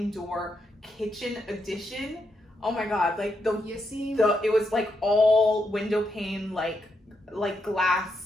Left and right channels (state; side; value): normal; both; correlation 0.81